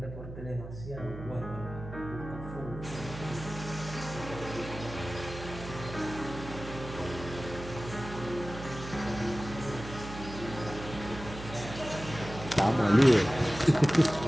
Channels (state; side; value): noise; right; hum, 11 dB below the sound